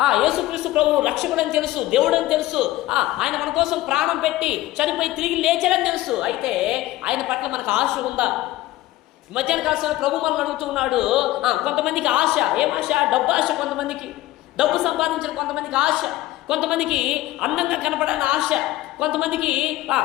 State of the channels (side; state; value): right; quieter; 16.4 dB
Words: యేసుక్రీస్తు ప్రభు రక్షకుడు అని తెలుసు, దేవుడు అని తెలుసు, ఆయన మన కోసం ప్రాణం పెట్టి చనిపోయి తిరిగి లేచాడని తెలుసు. అయితే ఆయన పట్ల మనకు ఆశ ఉందా? మధ్యాహ్న కాలంలో ప్రభు మనల్ని అడుగుతున్నాడు. కొంతమందికి ఆశ, ఏం ఆశ? డబ్బు ఆశ. కొంతమందికి డబ్బు సంపాదించిన, కొంతమందికి ఆశ, కొంతమందికి అందంగా కనపడాలని ఆశ, కొంతమందికి